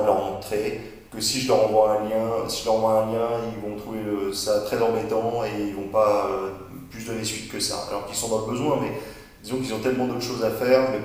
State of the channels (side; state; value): both; identical; correlation 1.00